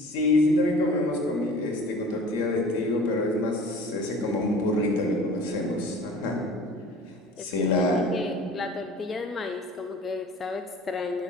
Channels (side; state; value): both; normal; correlation 0.44